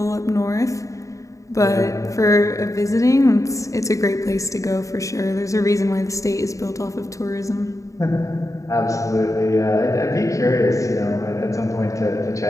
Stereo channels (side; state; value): right; late; 0.16 ms